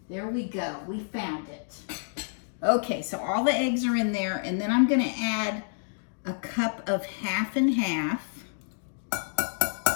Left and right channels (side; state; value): right; silent; digital silence